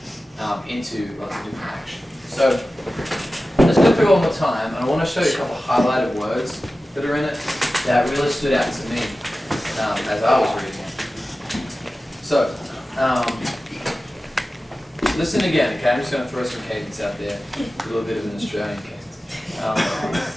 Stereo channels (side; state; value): both; normal; correlation 0.95